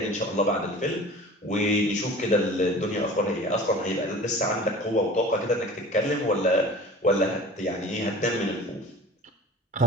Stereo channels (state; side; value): normal; both; correlation 0.41